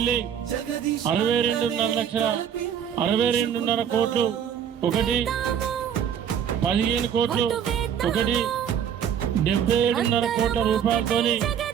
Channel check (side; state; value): left; quieter; 8.6 dB